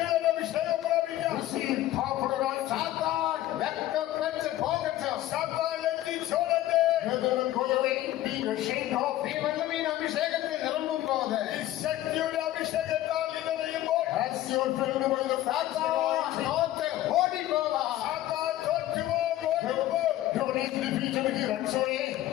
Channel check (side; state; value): right; quieter; 14.4 dB